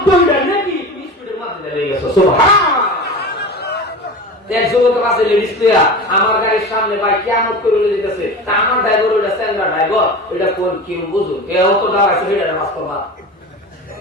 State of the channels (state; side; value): normal; both; correlation 0.31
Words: মিটার নাকি তুমি স্পিডের মধ্যে লেগে গেছো। সুবহানাল্লাহ। এক যুবক আছে লেডিস প্লেয়ার, আমার গাড়ির সামনে ভাই কিয়ামত করে যেতেছে, তা আমার ড্রাইভার ওইটা স্ট্যান্ডার্ড ড্রাইভার, ওইটা কোন কি বুঝুন কেউ তো দাঁড়াইছে সেটা বাস্তবতা।